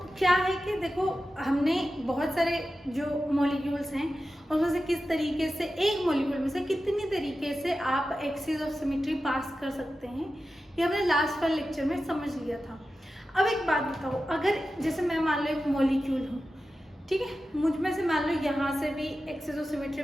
क्या है कि देखो हमने बहुत सारे जो मॉलिक्यूल्स हैं उसमें से किस तरीके से एक मॉलिक्यूल में से कितनी तरीके से आप एक्सिस ऑफ सिमेट्री पास कर सकते हैं, ये हमने लास्ट वाले लेक्चर में समझ लिया था। अब एक बात बताओ, अगर जैसे मैं मान लो एक मॉलिक्यूल हूँ, ठीक है, मुझ में से मान लो यहाँ से भी एक्सिस ऑफ सिमेट्री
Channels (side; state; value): both; normal; correlation 0.93